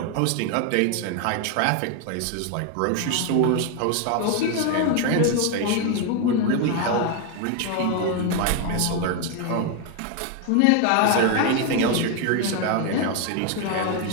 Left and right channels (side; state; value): both; different; correlation 0.01